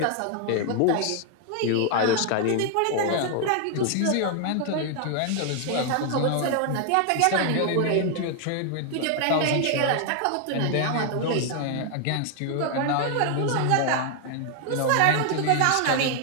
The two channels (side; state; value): both; different; correlation 0.00